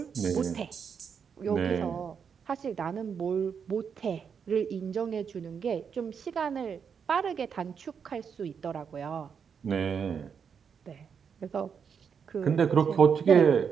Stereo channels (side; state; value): left; quieter; 6.8 dB